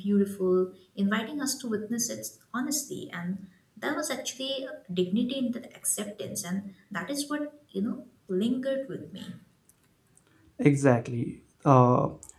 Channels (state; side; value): identical; both; correlation 1.00